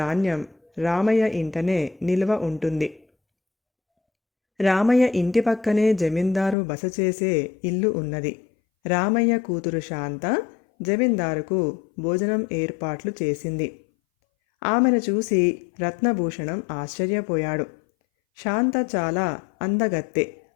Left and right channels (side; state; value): right; drops out; at 6.6 s